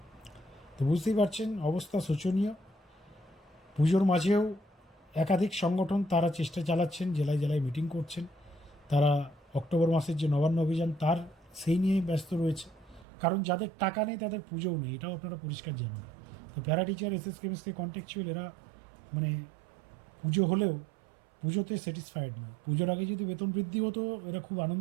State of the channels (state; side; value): drops out; left; at 13.1 s